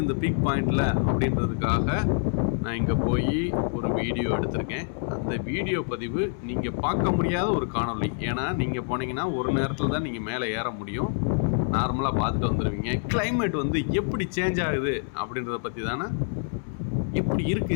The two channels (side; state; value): right; silent; digital silence